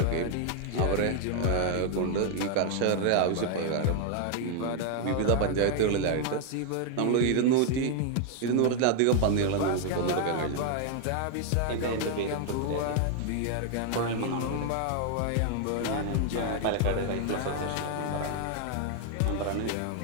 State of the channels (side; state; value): both; different; correlation 0.00